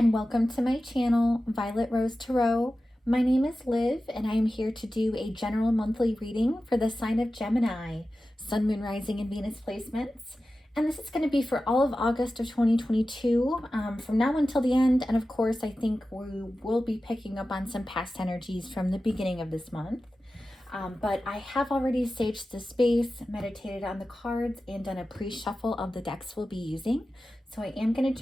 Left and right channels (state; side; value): normal; both; correlation 0.94